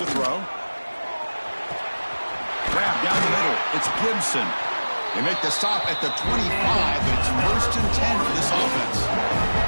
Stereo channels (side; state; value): both; inverted; correlation -1.00